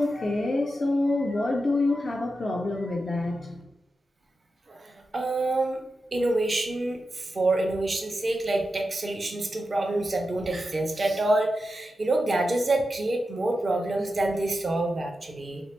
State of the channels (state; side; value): normal; both; correlation 0.90